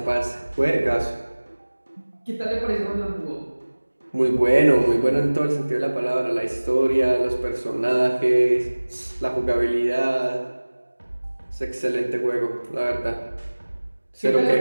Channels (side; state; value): both; inverted; correlation -1.00